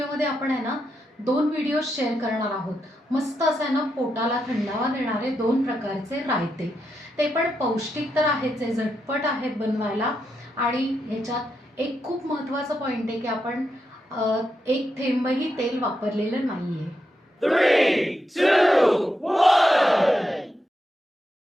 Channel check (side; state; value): both; normal; correlation 0.84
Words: आपण आहे ना 2 व्हिडिओ शेअर करणार आहोत. मस्त असं आहे ना पोटाला थंडावा देणारे 2 प्रकारचे रायते. ते पण पौष्टिक तर आहेच आहे, झटपट आहेत बनवायला आणि ह्याच्यात एक खूप महत्त्वाचं पॉईंट आहे की आपण एक थेंबही तेल वापरलेलं नाहीये. 3, 2, 1.